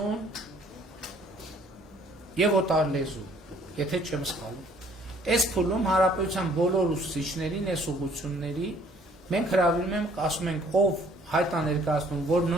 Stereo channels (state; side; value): normal; both; correlation 0.59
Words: եւ օտար լեզու, եթե չեմ սխալվում։ Այս փուլում հարաբերության բոլոր ուսուցիչներին, այս ուղղությունների մենք հրավիրում ենք, ասում ենք, ով հայտ է ներկայացնում, որ